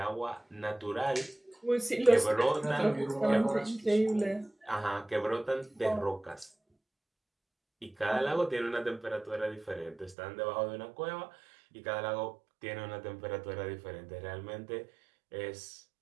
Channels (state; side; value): drops out; left; at 10.2 s